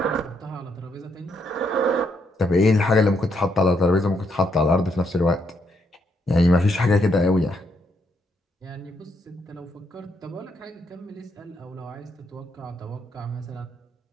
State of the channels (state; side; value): normal; both; correlation 0.76